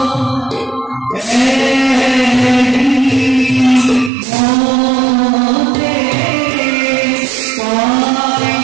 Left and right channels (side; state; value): left; drops out; at 4.1 s